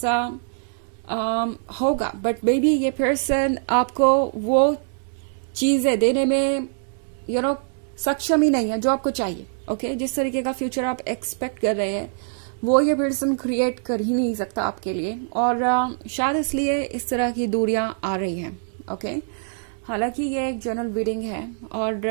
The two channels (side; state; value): left; silent; 63 dB below the other